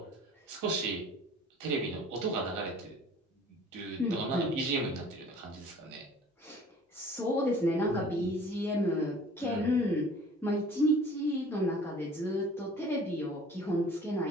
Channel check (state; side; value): normal; both; correlation 0.49